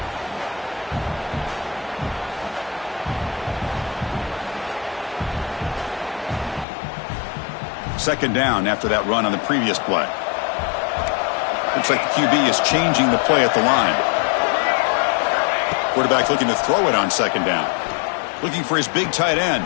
Second down after that run on the previous play. Looks like the QB is changing the play at the line. Quarterback looking to throw it on second down. Looking for his big tight end.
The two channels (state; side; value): drops out; right; at 6.7 s